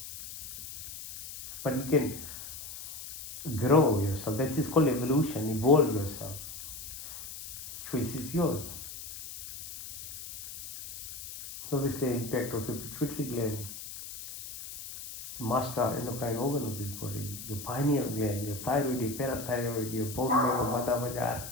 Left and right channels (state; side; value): noise; left; hiss, 11 dB below the sound